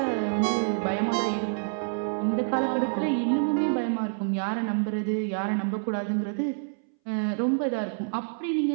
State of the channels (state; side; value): silent; left; 60 dB below the other